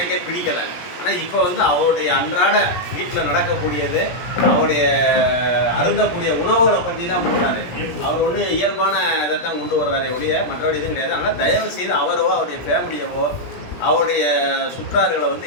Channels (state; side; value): late; right; 17 ms